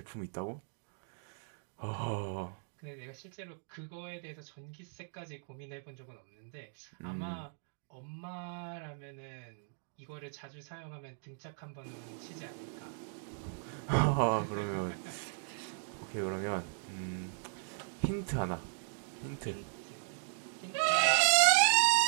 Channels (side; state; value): left; silent; digital silence